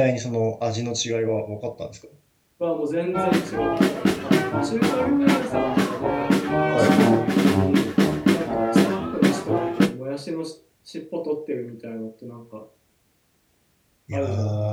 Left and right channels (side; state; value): both; identical; correlation 1.00